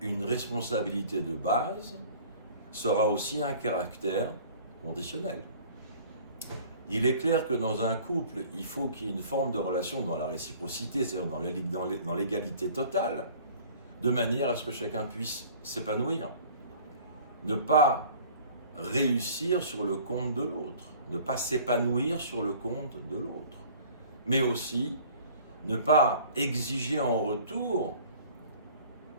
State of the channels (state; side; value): inverted; both; correlation -0.49